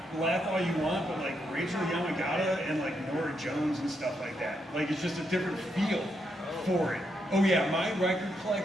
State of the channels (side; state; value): both; normal; correlation 0.80